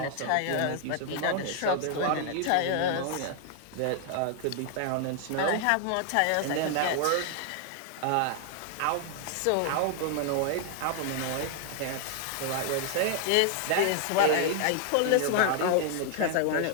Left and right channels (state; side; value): different; both; correlation 0.00